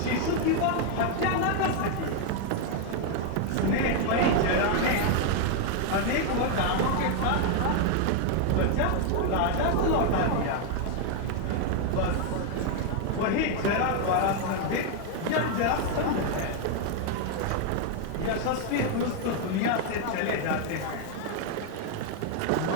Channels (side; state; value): both; different; correlation 0.00